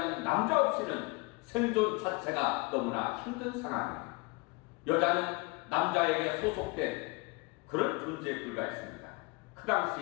남자 없이는 생존 자체가 너무나 힘든 상황이에요. 여자는 남자에게 소속된 그런 존재에 불과했습니다. 그 당시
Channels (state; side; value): quieter; right; 27.2 dB